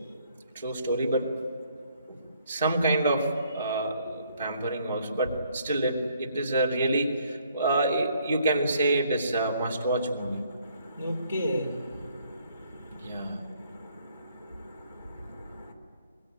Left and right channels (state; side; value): inverted; both; correlation -0.66